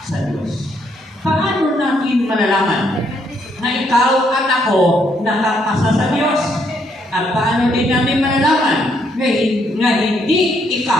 sa Diyos. Paano natin malalaman na ikaw at ako nakapasa sa Diyos? At paano din natin malalaman na hindi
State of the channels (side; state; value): both; normal; correlation 0.72